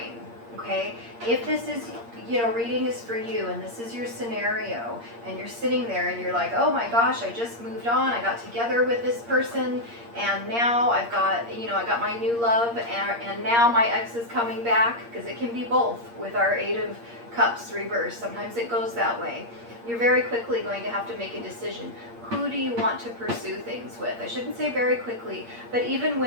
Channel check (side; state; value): left; late; 8.6 ms